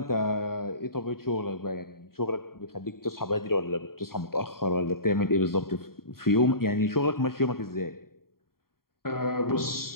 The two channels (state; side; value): late; right; 0.93 ms